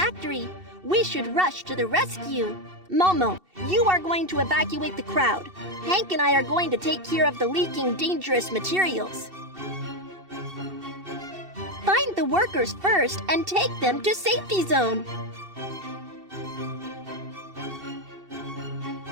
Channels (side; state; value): left; late; 2.7 ms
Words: We should rush to the rescue. Momo, you are going to evacuate the crowd. Hank and I are going to take care of the leaking dangerous materials. Find the workers first and take them to safety zone.